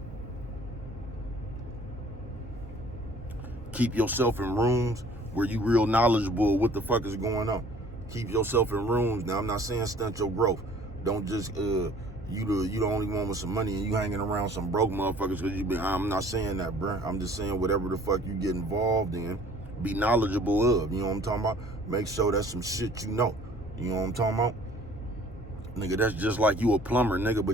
keep yourself in rooms where you real knowledgeable of what the fuck is going on. Keep yourself in rooms. Now, I'm not saying stunt your growth. Don't just you the only one with some money and you hanging around some broke motherfuckers because you be. I'm not saying that, bruh. I'm just saying whatever the fuck you get involved in, be knowledgeable of. You know what I'm talking about? Make sure that's some shit you know. You know what I'm talking about? Nigga, that's just like you a plumber, nigga,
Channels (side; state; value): both; normal; correlation 0.53